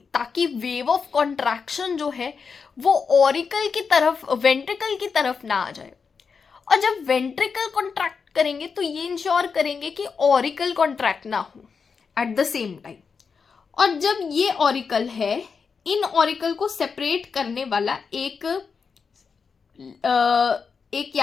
ताकि वेव ऑफ कॉन्ट्रैक्शन जो है वो ऑरिकल की तरफ, वेंट्रिकल की तरफ ना आ जाए। और जब वेंट्रिकल कॉन्ट्रैक्ट करेंगे तो ये इंश्योर करेंगे कि ऑरिकल कॉन्ट्रैक्ट ना हो एट द सेम टाइम। और जब ये ऑरिकल है, इन ऑरिकल को सेपरेट करने वाला एक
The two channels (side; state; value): right; quieter; 5.5 dB